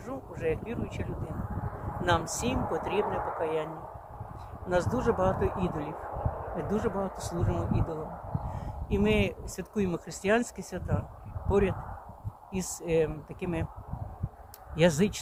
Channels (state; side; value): identical; both; correlation 1.00